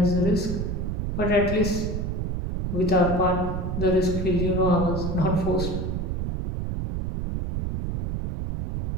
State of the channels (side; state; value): right; noise; rumble, 2 dB below the sound